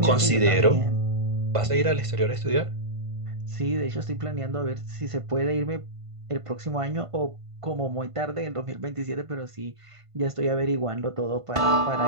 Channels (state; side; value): late; left; 1.5 ms